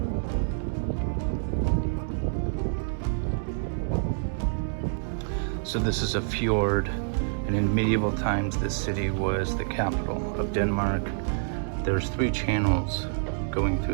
So this is a fjord, and in medieval times this city was the capital of Denmark. There's 3 channels going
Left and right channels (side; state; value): left; silent; digital silence